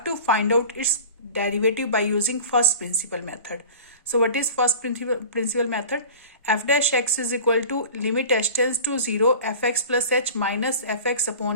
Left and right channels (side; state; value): both; inverted; correlation -0.39